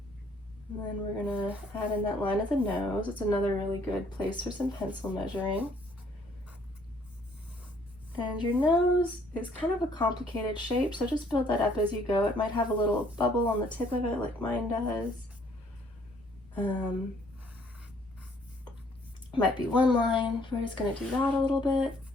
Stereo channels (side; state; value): both; normal; correlation 0.63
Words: And then we're going to add in that line of the nose. It's another really good place for some pencil measuring. And your nose is kind of a complicated shape, so just build that up as you go. It might have a little bubble on the tip of it like mine does. Might be one line. We're just going to do that a little bit.